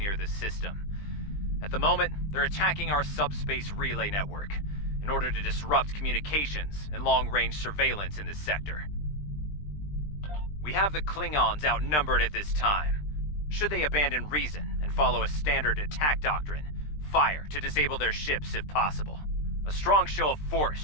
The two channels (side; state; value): right; late; 20 ms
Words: the system. At the moment, they're attacking our subspace relay network in order to disrupt communications and long-range surveillance in this sector. We have the Klingons outnumbered at this time. Should they abandon reason and follow a standard attack doctrine, fire to disable their ships if possible. A strong show of force